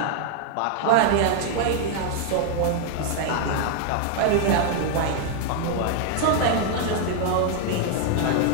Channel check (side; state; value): both; different; correlation 0.00